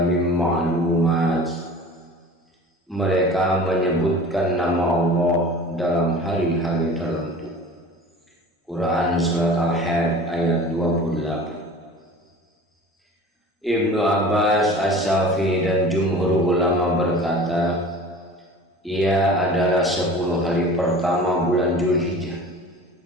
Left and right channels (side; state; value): both; normal; correlation 0.40